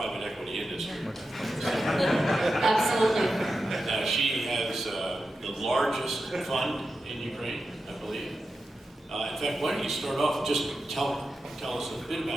equity industry. Absolutely. She has the largest fund in Ukraine, I believe. In fact, why don't you start off, just tell us a bit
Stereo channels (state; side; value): normal; both; correlation 0.90